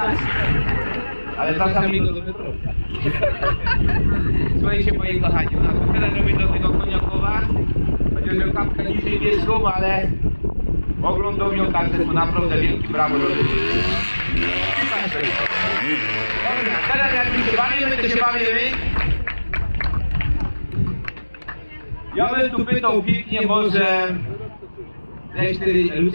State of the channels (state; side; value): inverted; both; correlation -1.00